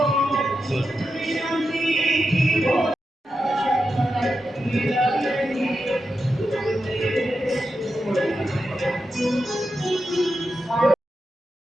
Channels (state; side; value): normal; both; correlation 0.88